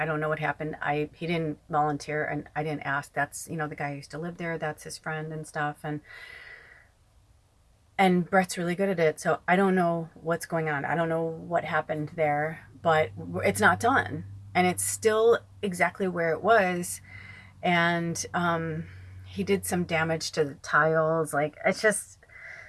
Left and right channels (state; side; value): identical; both; correlation 1.00